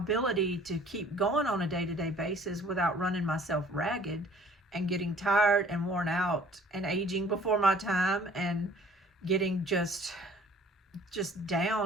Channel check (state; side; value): normal; both; correlation 0.53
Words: to keep going on a day-to-day basis without running myself ragged and getting tired and worn out and aging before my time and getting just